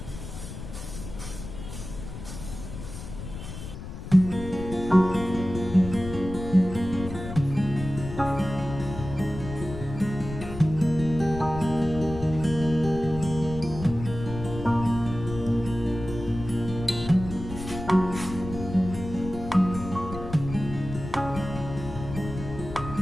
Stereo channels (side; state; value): left; noise; rumble, 10 dB below the sound